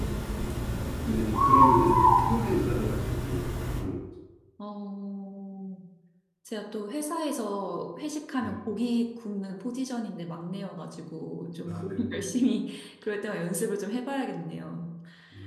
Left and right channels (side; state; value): both; identical; correlation 1.00